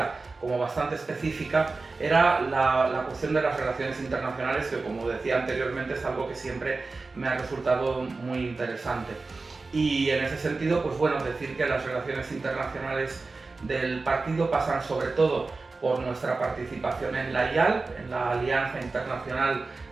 como bastante específica, era la cuestión de las relaciones internacionales, que como decía anteriormente es algo que siempre me ha resultado muy interesante. Y en ese sentido, pues bueno, decir que las relaciones internacionales del partido pasan sobre todo por nuestra participación en la IAL, en la Alianza Internacional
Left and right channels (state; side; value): quieter; left; 3.8 dB